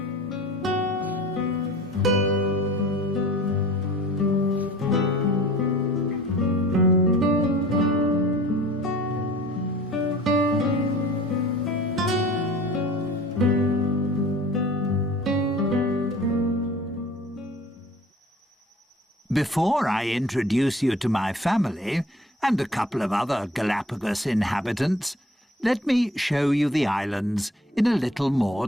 Before I introduce you to my family and a couple of other Galapagos inhabitants, let me show you the islands in a little more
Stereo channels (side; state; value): both; normal; correlation 0.46